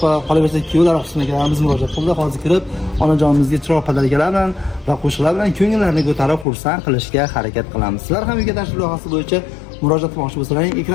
qolaversa kuyovlar qismiga biz murojaat qildik. Hozir kirib onajonimizga chiroq padalkalar bilan va qo'shiqlar bilan ko'ngillarni ko'tarib xursand qilishga harakat qilamiz. Sizlar ham uyga tashrif loyihasi bo'yicha murojaat qilmoqchi bo'lsalaring,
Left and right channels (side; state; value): right; drops out; at 6.5 s